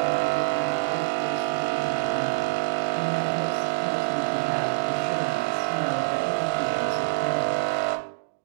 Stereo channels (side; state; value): left; silent; digital silence